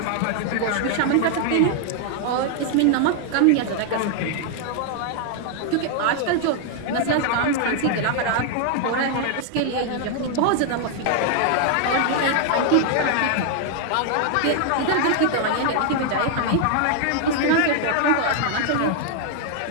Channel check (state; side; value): different; both; correlation 0.00